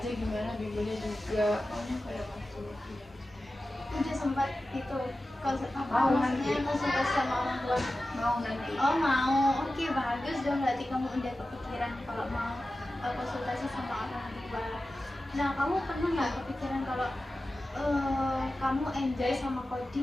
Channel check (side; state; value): both; normal; correlation 0.94